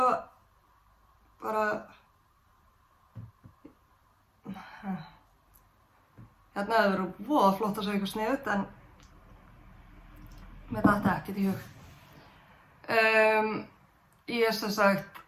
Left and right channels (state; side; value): identical; both; correlation 1.00